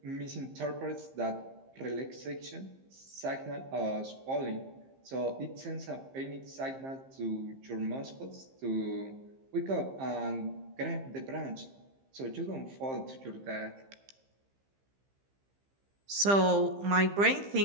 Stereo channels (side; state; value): left; late; 15 ms